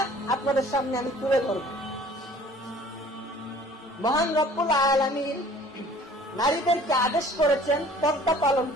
আপনাদের সামনে আমি তুলে ধরব। মহান রব্বুল আলামিন নারীদেরকে আদেশ করেছেন পর্দা পালন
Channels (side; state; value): both; normal; correlation 0.51